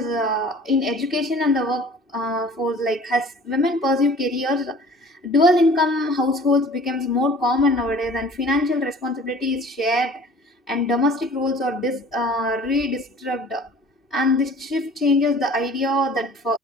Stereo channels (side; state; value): both; normal; correlation 0.48